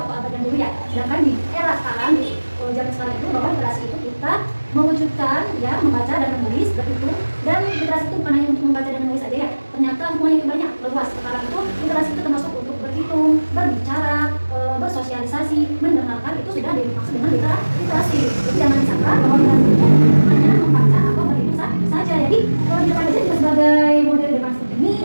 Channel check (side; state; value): both; inverted; correlation -1.00